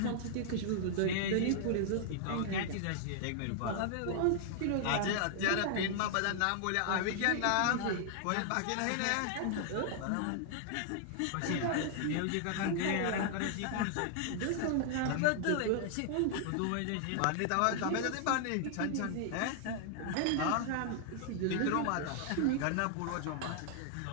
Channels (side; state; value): both; different; correlation 0.00